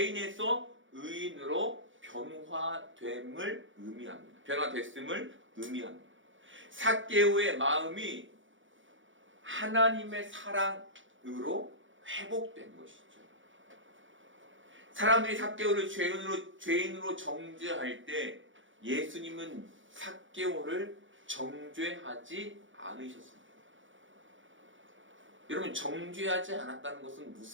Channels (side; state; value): left; late; 0.56 ms